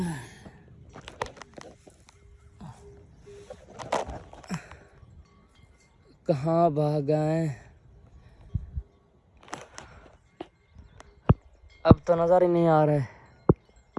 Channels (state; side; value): identical; both; correlation 1.00